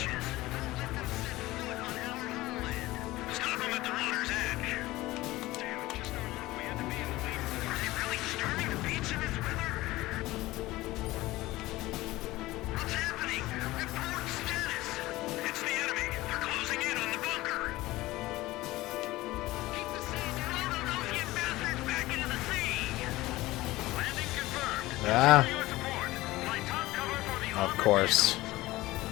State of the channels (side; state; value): right; quieter; 18.3 dB